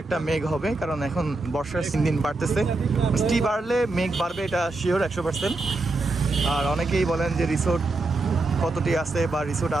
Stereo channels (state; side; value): quieter; left; 3.2 dB